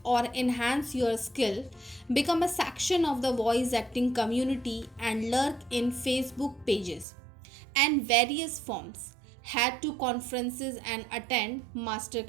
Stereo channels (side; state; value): left; drops out; at 7.1 s